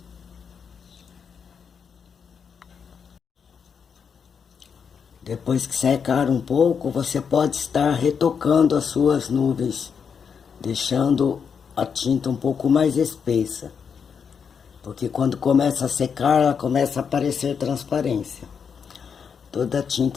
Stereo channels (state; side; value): quieter; right; 6.6 dB